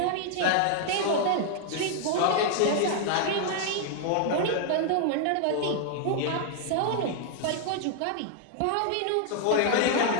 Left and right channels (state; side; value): different; both; correlation 0.00